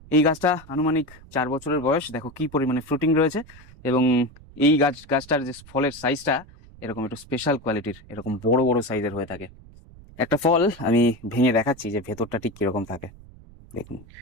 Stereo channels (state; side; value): noise; right; rumble, 21 dB below the sound